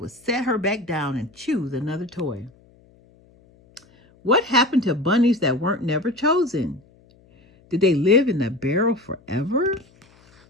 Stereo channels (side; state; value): left; noise; hum, 30 dB below the sound